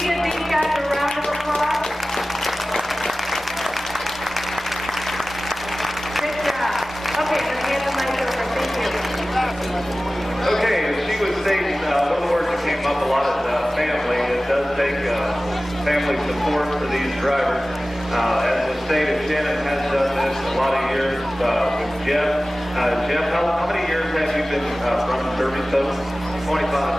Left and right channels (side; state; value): both; normal; correlation 0.97